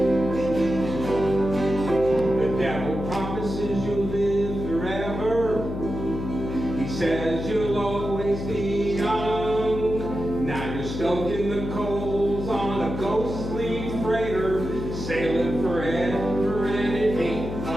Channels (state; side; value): noise; left; hum, 6 dB below the sound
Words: The devil promises you'll live forever. He says you'll always be young. Now you're stoking the coals on a ghostly freighter, sailing forever, and it ain't